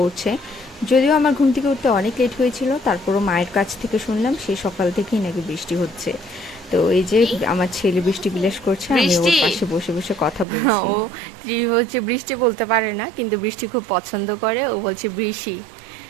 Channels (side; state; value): left; drops out; at 10.5 s